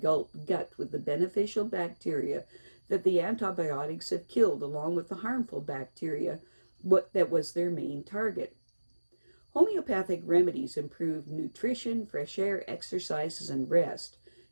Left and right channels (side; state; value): both; inverted; correlation -1.00